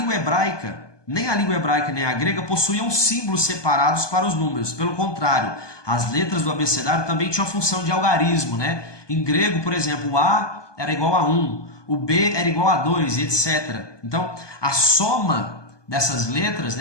hebraica, nem a língua hebraica nem a grega possuíam símbolos separados para os números. Pelo contrário, as letras do abecedário também tinham a função de algarismo, né? Em grego, por exemplo, o A era igual a 1, o B era igual a 2, etc. Então, a soma dessas letras,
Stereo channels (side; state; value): right; late; 1.2 ms